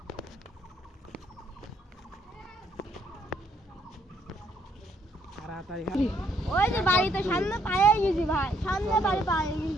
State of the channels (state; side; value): normal; both; correlation 0.69